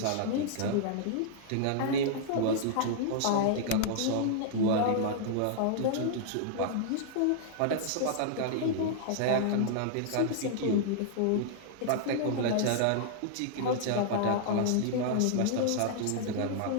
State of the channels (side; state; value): both; different; correlation -0.01